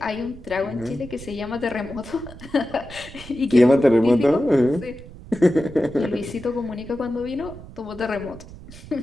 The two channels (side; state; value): right; noise; rumble, 16 dB below the sound